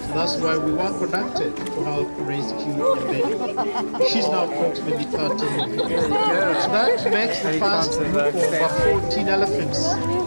So that's why we were conducted to help rescue Nyambeni. She's now approximately 13 months. So that makes the first group of about 14 elephants.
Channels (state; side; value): inverted; both; correlation -1.00